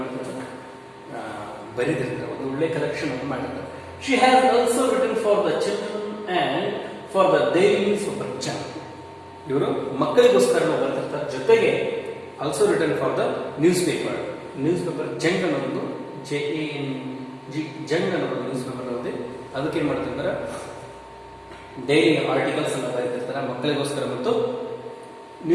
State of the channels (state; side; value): identical; both; correlation 1.00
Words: ಮಾಡ್ತಾರೆ, ಬರೀದಿರ್ತಾರೆ. ಒಂದು ಒಳ್ಳೆ ಕಲೆಕ್ಷನ್ ಅನ್ನು ಮಾಡಿರ್ತಾರೆ. She has also written for the children and for the daily super channel. ಇವರು ಮಕ್ಕಳಿಗೋಸ್ಕರ ಬರ್ತಿರ್ತಾರೆ. ಜೊತೆಗೆ also written for the newspaper Jang ಅನ್ನೋದು JANG ಜಂಗ್ ಅನ್ನೋದು ನ್ಯೂಸ್ ಪೇಪರ್ ಅನ್ನೋದು. ಅದಕ್ಕೆ ಏನು ಮಾಡ್ತಿರ್ತಾರೆ, ಡೈಲಿ ಆರ್ಟಿಕಲ್ಸ್ ಅನ್ನ ಬರೀತಿರ್ತಾರೆ ಮಕ್ಕಳಿಗೋಸ್ಕರ ಮತ್ತು